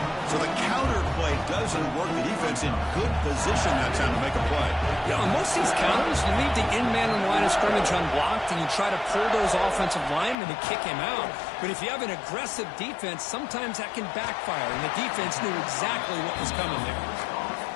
So the counter play doesn't work. The defense in good position that time to make a play. Yeah, on most of these counters, you leave the in-man on the line of scrimmage unblocked, and you try to pull those offensive linemen to kick him out. But if you have an aggressive defense, sometimes that can backfire, and the defense knew exactly what was coming there.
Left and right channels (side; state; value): right; drops out; at 10.4 s